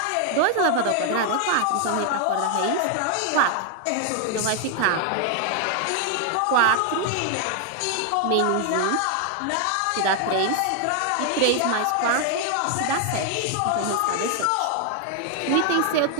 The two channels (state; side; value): different; both; correlation 0.00